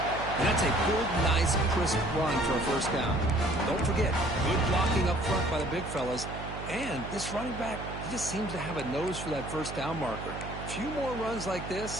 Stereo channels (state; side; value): noise; right; hum, 9 dB below the sound